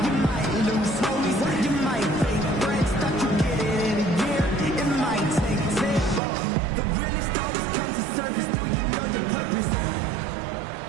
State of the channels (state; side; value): drops out; left; at 6.2 s